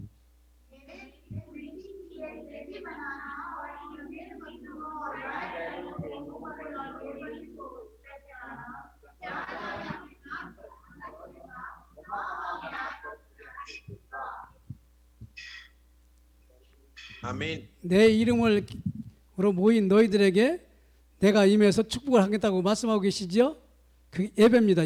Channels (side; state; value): both; identical; correlation 1.00